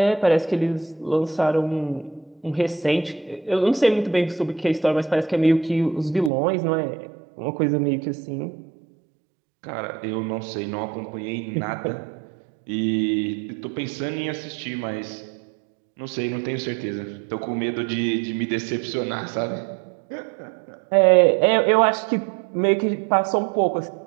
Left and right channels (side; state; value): left; drops out; at 6.3 s